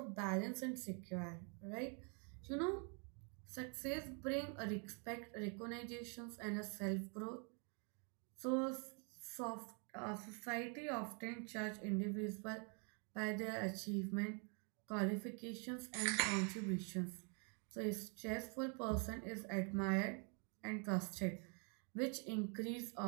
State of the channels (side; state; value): left; quieter; 37.9 dB